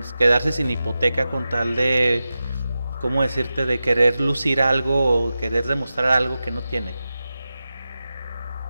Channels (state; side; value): inverted; both; correlation -0.93